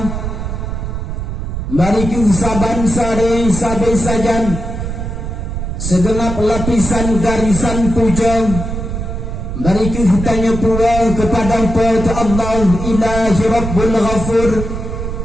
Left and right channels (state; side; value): noise; right; rumble, 5 dB below the sound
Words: mari kita saban-sare sabai sajan segenap lapisan garisan puja, mari kita tanya pula kepada Allah Ilahi Rabbul Ghafur.